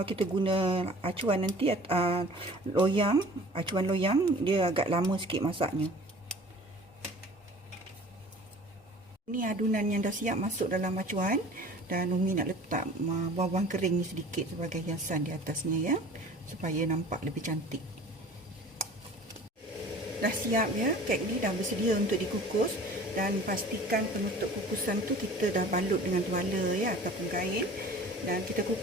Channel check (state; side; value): normal; both; correlation 0.45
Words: kita guna acuan nanti, acuan loyang, dia agak lama sikit masaknya. Ini adunan yang dah siap masuk dalam acuan. Dan Umi nak letak bawang kering ni sedikit sebagai hiasan di atasnya ya, supaya nampak lebih cantik. Dah siap ya, kek ni dah bersedia untuk dikukus. Dan pastikan penutup kukusan tu kita dah balut dengan tuala ya, ataupun kain. Dan kita